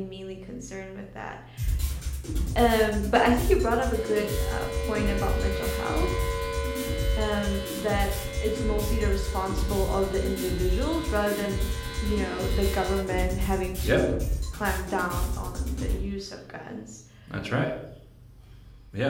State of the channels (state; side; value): identical; both; correlation 1.00